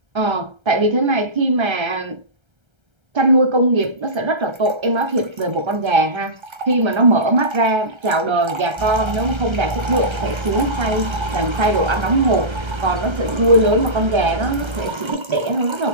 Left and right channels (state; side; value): late; left; 1.3 ms